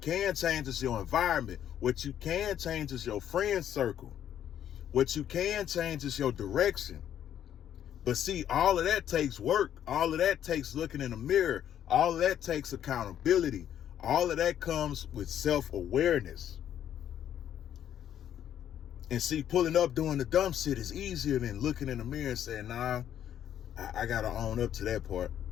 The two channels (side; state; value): right; quieter; 10.3 dB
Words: change is your environment. What you can change is your friend circle. What you can change is your direction. But see, all of that takes work. All of that takes looking in the mirror. All of that takes accountability. All of that comes with self-awareness. And see, pulling up doing the dumb shit is easier than looking in the mirror and saying, nah, I gotta own up to that part.